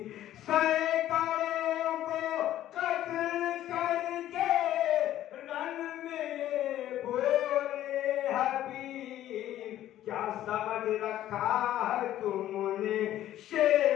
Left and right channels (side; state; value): right; quieter; 12.8 dB